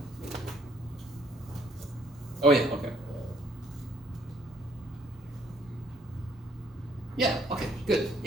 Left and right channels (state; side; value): normal; both; correlation 0.64